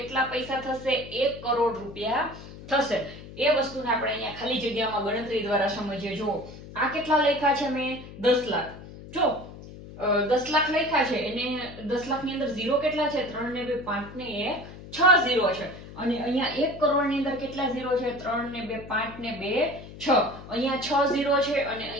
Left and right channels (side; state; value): left; noise; hum, 15 dB below the sound